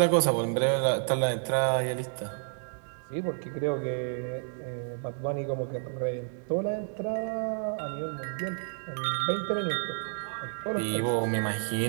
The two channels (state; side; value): silent; left; digital silence